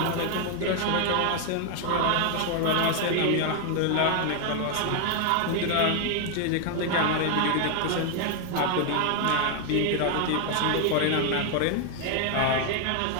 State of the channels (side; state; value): both; different; correlation 0.01